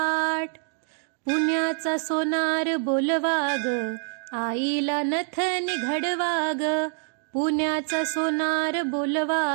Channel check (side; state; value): left; silent; 59 dB below the other